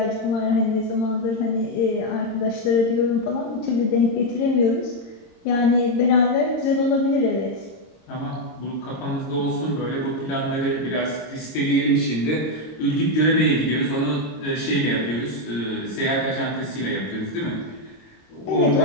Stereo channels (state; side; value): late; right; 26 ms